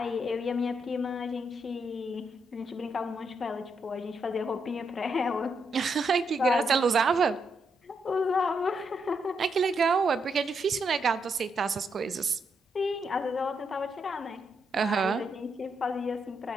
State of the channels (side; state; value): both; normal; correlation 0.80